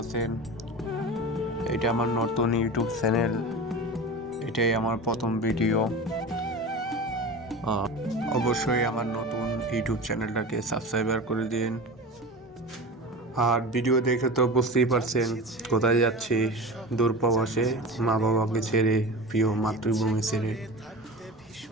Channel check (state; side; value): normal; both; correlation 0.31